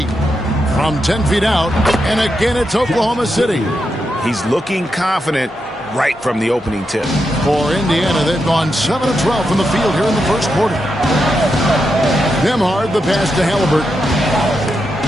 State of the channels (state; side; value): normal; both; correlation 0.85